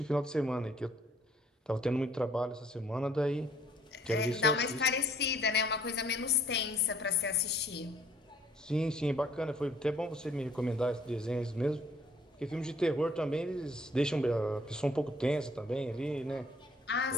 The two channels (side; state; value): both; normal; correlation 0.62